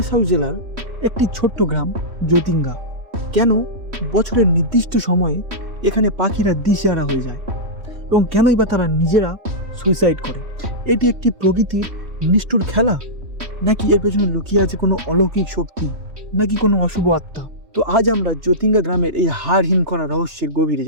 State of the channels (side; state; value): left; late; 3.1 ms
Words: জেলার একটি ছোট্ট গ্রাম জ্যোতিঙ্গা। কেন বছরের নির্দিষ্ট সময়ে এখানে পাখিরা দিশেহারা হয়ে যায় এবং কেনই বা তারা নিজেরা সুইসাইড করে? এটি একটি প্রকৃতির নিষ্ঠুর খেলা, নাকি এর পেছনে লুকিয়ে আছে কোনো অলৌকিক শক্তি, নাকি কোনো অশুভ আত্মা? তো আজ আমরা জ্যোতিঙ্গা গ্রামের এই হাড় হিম করা রহস্যের গভীরে